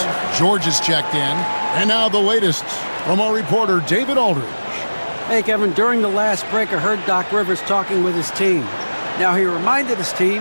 George is checked in. And now the latest from our reporter, David Aldridge. Hey, Kevin, during the last break, I heard Doc Rivers talking with his team. Now, he reminded his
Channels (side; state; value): both; inverted; correlation -1.00